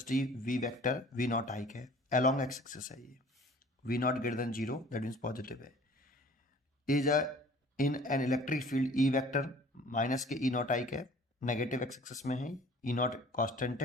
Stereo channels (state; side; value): normal; both; correlation 0.49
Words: v vector v naught I है along x axis है ये v naught greater than 0 that means positive है is a in an electric field E vector minus के E naught I है negative x axis में है E naught constant